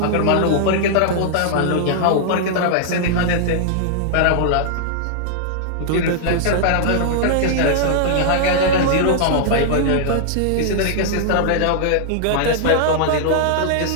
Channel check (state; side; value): different; both; correlation -0.01